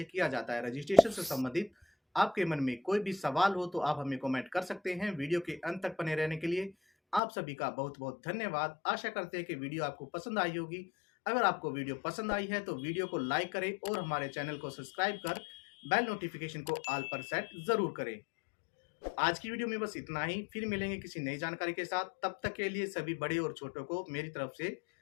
किया जाता है। रजिस्ट्रेशन से संबंधित आपके मन में कोई भी सवाल हो तो आप हमें कमेंट कर सकते हैं। वीडियो के अंत तक बने रहने के लिए आप सभी का बहुत बहुत धन्यवाद। आशा करते हैं कि वीडियो आपको पसंद आई होगी। अगर आपको वीडियो पसंद आई है तो वीडियो को लाइक करें और हमारे चैनल को सब्सक्राइब कर बेल नोटिफिकेशन को ऑल पर सेट जरूर करें। आज की वीडियो में बस इतना ही। फिर मिलेंगे किसी नई जानकारी के साथ। तब तक के लिए सभी बड़े और छोटों को मेरी तरफ से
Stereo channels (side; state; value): right; drops out; at 7.2 s